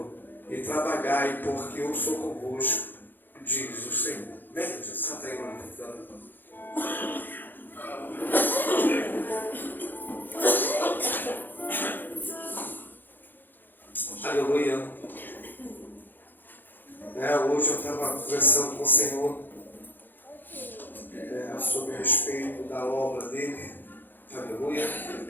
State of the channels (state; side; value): late; right; 0.091 ms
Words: e trabalhai, porque eu sou convosco, diz o Senhor. Vem, Jesus, senta aí, mano. Aleluia. Hoje eu estava conversando com o Senhor sobre a respeito da obra dele. Aleluia.